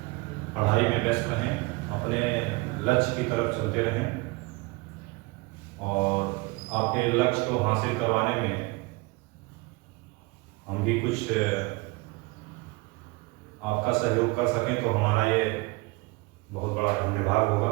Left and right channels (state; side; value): quieter; left; 24.7 dB